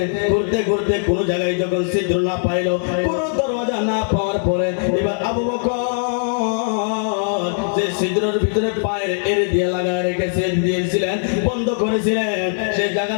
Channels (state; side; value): silent; right; digital silence